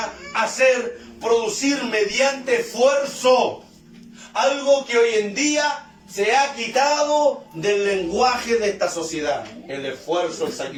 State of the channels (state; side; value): identical; both; correlation 1.00